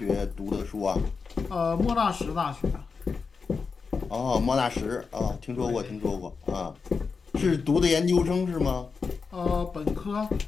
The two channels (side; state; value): right; quieter; 5.0 dB